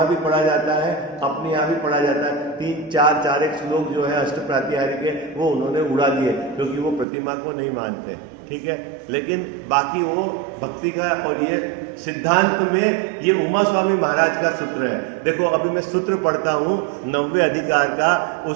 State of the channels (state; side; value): drops out; left; at 7.1 s